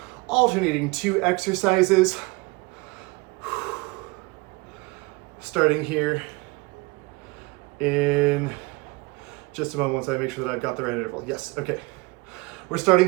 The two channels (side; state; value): left; quieter; 25.2 dB